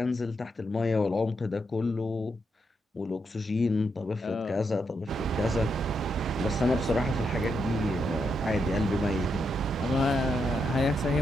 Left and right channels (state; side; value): normal; both; correlation 0.81